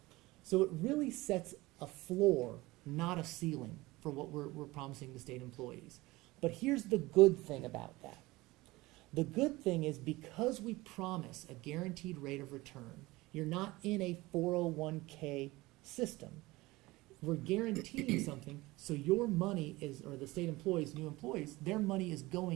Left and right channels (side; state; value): left; quieter; 20.4 dB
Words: So it really sets a floor, not a ceiling, for what we're promising to state employees. But here's the good thing about that. The good thing is because we promise a guaranteed rate of return, you're not in a 401k system. We're guaranteeing something, so your money is, or the state employees, new employees, their money is